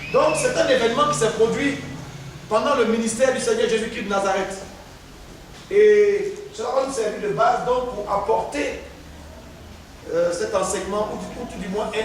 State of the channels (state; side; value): identical; both; correlation 1.00